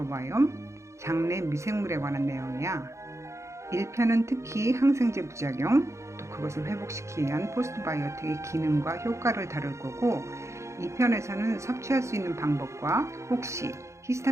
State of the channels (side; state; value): left; late; 0.14 ms